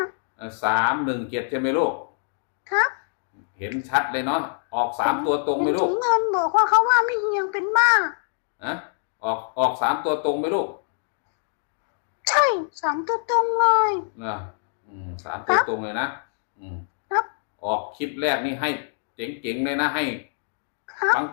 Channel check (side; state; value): right; silent; digital silence